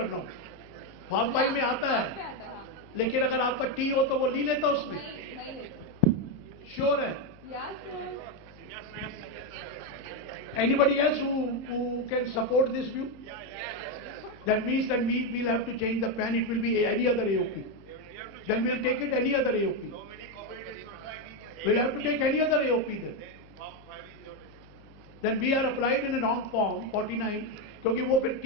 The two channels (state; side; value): noise; left; hum, 24 dB below the sound